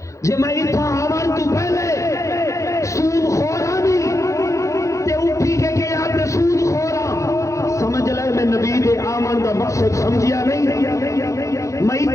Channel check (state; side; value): late; right; 0.15 ms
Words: جے میں اتھا آون تو پہلے سود خورا نہیں تے اٹھی کے گیا تے سود خورا سمجھ لے میں نبی دے آمن دا مقصد سمجھیا نہیں، میں